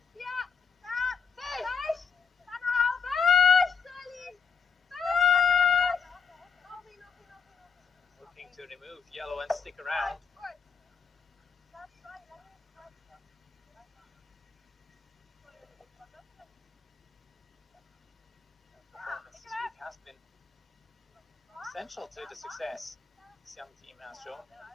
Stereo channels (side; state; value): right; quieter; 6.0 dB